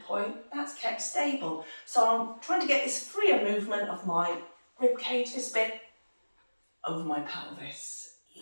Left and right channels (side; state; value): both; inverted; correlation -1.00